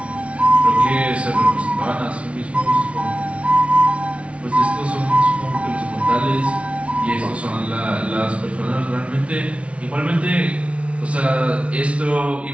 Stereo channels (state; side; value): late; left; 0.062 ms